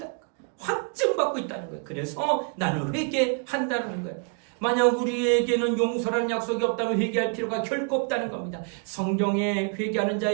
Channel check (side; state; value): left; quieter; 39.2 dB